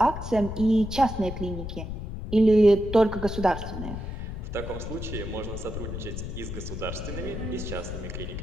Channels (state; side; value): noise; left; rumble, 6 dB below the sound